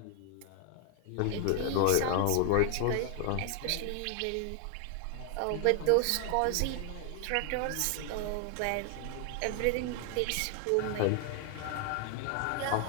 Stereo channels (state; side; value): different; both; correlation 0.01